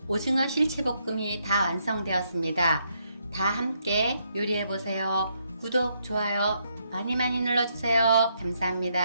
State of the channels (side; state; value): both; inverted; correlation -0.76